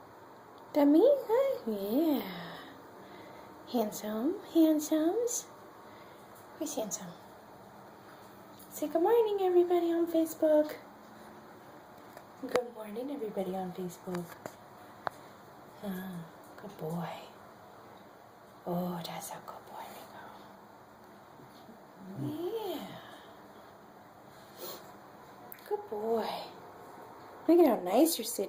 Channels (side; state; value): both; identical; correlation 1.00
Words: Dummy? Huh? Yeah. Handsome? Handsomes? Who's handsome? Say good morning, everybody on Facebook. Good morning, everybody on Facebook. Good boy. Oh, that's a good boy, Rico. Yeah. Good boy. Look at how nice you're